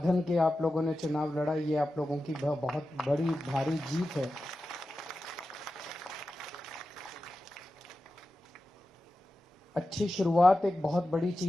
के आप लोगों ने चुनाव लड़ा। ये आप लोगों की बहुत बड़ी भारी जीत है। अच्छी शुरुआत एक बहुत बड़ी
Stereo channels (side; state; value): both; normal; correlation 0.92